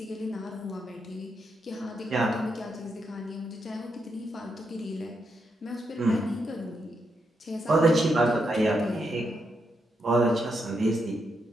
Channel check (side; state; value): both; normal; correlation 0.82